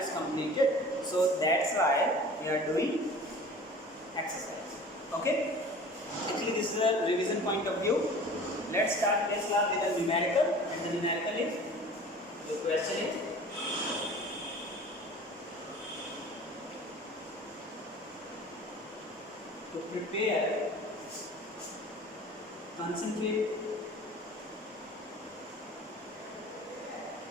completed, so that's why we are doing exercise. Okay? Actually this is a revision point of view. Let's start this class with a numerical, and the numerical is, the question is, to prepare concentrated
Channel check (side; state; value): both; normal; correlation 0.43